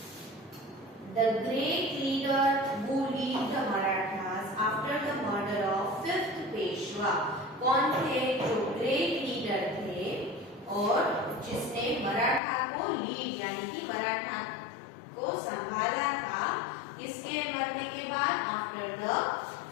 the great leader who lead the Marathas after the murder of 5th Peshwa. कौन थे जो ग्रेट लीडर थे और जिसने मराठा को लीड यानी कि मराठा को संभाला था किसके मरने के बाद? After the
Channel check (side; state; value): right; drops out; at 12.4 s